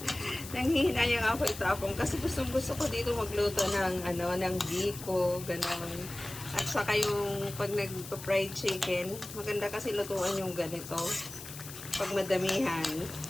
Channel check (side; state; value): left; noise; hiss, 12 dB below the sound